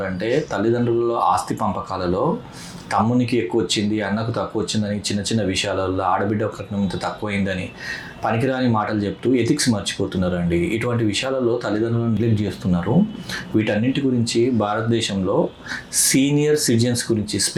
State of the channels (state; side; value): identical; both; correlation 1.00